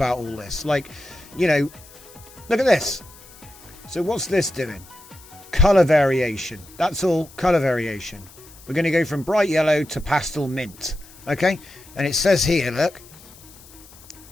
all this. Like, you know, look at this. So what's this doing? Color variation. That's all, color variation. We're going to go from bright yellow to pastel mint. Okay? And it says here,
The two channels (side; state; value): left; noise; hiss, 22 dB below the sound